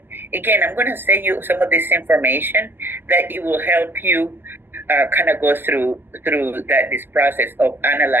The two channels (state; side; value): late; left; 0.095 ms